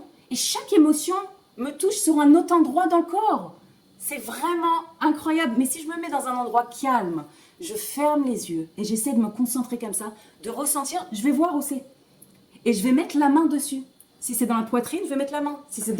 Et chaque émotion me touche sur un autre endroit dans le corps. C'est vraiment incroyable. Mais si je me mets dans un endroit calme, je ferme les yeux et j'essaie de me concentrer comme ça, de ressentir, je vais voir où c'est. Et je vais mettre la main dessus. Si c'est dans la poitrine, je vais mettre la main. Si c'est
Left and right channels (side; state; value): both; identical; correlation 1.00